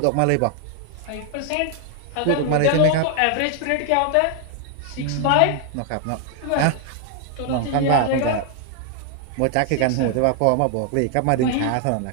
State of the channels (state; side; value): different; both; correlation 0.00